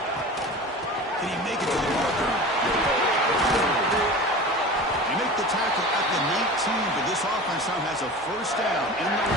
Can he make it to the marker? They make the tackle at the 19, but this offense now has a first down in the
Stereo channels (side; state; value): both; normal; correlation 0.35